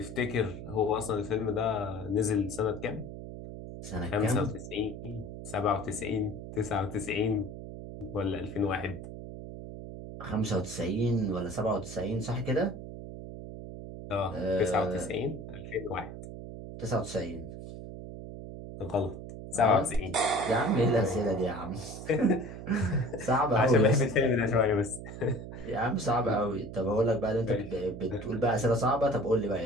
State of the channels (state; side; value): noise; right; hum, 10 dB below the sound